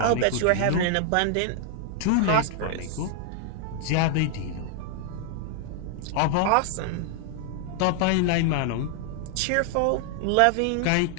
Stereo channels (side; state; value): both; different; correlation 0.00